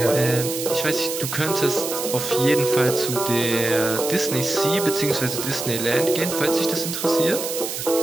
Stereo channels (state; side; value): noise; right; hiss, 5 dB below the sound